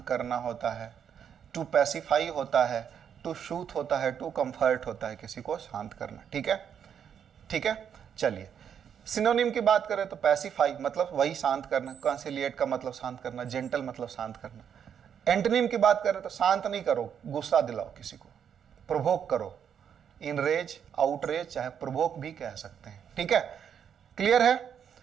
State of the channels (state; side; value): quieter; left; 8.2 dB